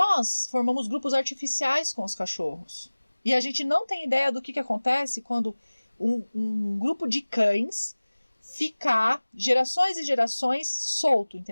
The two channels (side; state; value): both; inverted; correlation -1.00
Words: formamos grupos artificiais com os cachorros. E a gente não tem ideia do que acontece quando um grupo de cães ficar gerações e gerações solto,